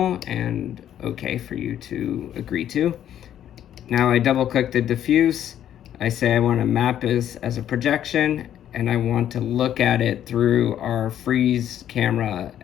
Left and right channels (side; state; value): right; quieter; 10.6 dB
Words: and okay for you to agree to. Now I double click the diffuse. I say I want to map this as a projection, and I want to look at it through our freeze camera